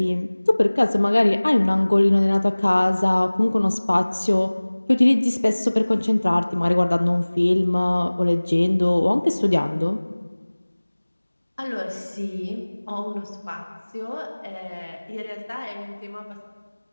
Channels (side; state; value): both; inverted; correlation -1.00